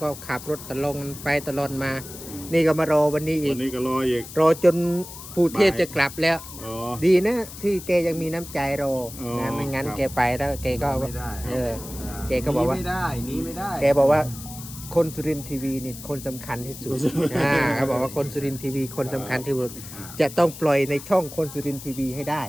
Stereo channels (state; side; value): noise; left; hiss, 13 dB below the sound